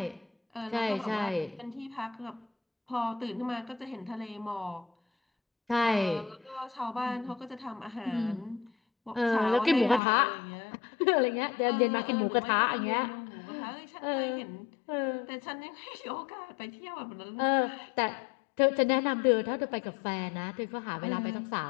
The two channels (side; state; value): right; drops out; at 10.0 s